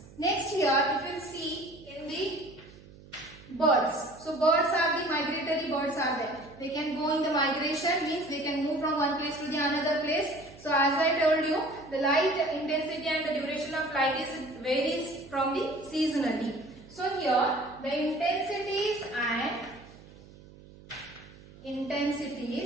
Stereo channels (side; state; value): right; noise; hum, 21 dB below the sound